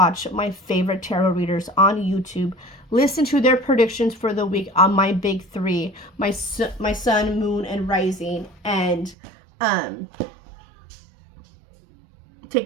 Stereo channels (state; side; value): drops out; left; at 9.2 s